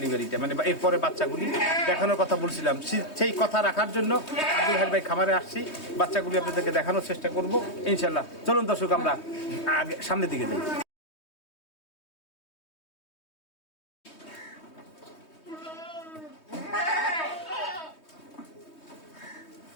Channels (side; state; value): right; late; 3.2 ms